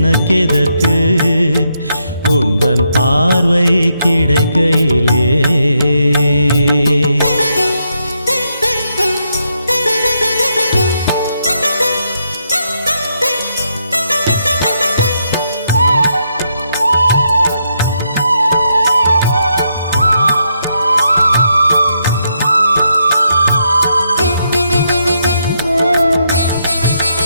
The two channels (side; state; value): both; inverted; correlation -0.79